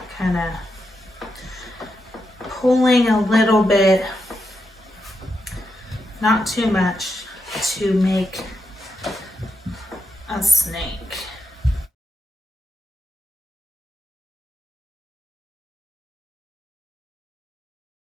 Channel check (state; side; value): normal; both; correlation 0.85